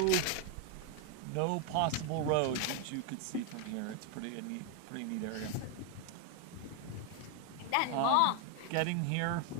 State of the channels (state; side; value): different; both; correlation 0.01